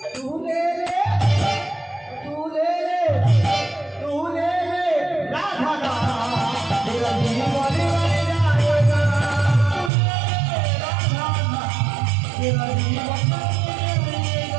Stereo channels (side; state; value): left; drops out; at 9.9 s